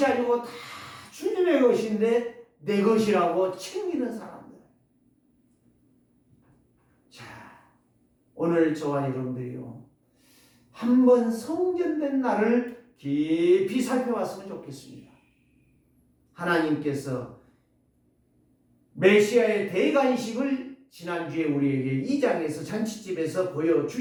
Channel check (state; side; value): identical; both; correlation 1.00